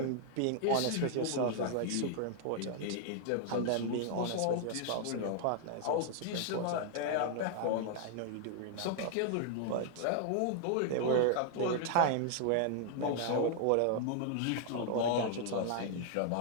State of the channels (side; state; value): both; different; correlation 0.00